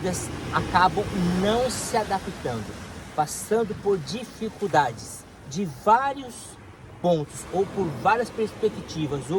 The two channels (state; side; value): identical; both; correlation 1.00